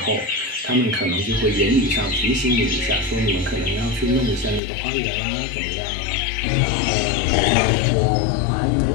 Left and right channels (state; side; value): drops out; right; at 4.6 s